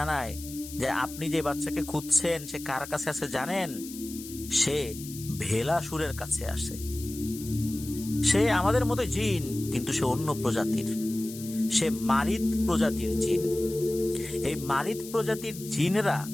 যে আপনি যে বাচ্চাকে খুঁজছেন সে কার কাছে আছে জানেন? সে ভেলাসুরের কাছে আসে। সে আমাদের মতো জিন, কিন্তু সে অন্য প্রজাতির। সে মারিদ প্রজাতির জিন। এই মারিদ প্রজাতির জিনেরা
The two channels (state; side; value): noise; left; hiss, 13 dB below the sound